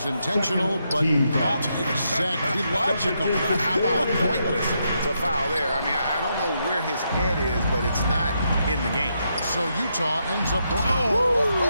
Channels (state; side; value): inverted; both; correlation -0.80